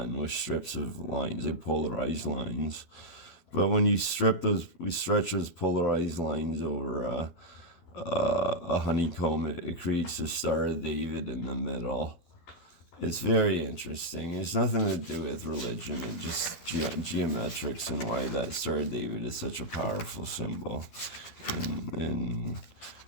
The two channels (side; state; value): right; late; 12 ms